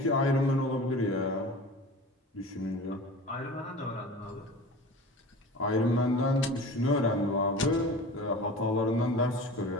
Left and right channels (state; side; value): normal; both; correlation 0.37